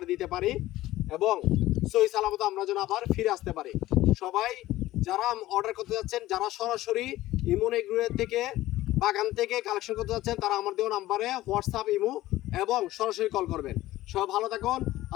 দিতে পারি এবং সহি সালামত আমরা যেন আবার ফিরে আসতে পারি। সবাই যারা অর্ডার করতে যাচ্ছেন, যারা সরাসরি ইমন এগ্রোয়ের থেকে বাগান থেকে কালেকশন করতে যাচ্ছেন, তারা আমার দেওয়া নাম্বারে হোয়াটসঅ্যাপ, ইমো এবং সরাসরি কল করবেন। সবাই ভালো থাকুন।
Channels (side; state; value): right; quieter; 16.1 dB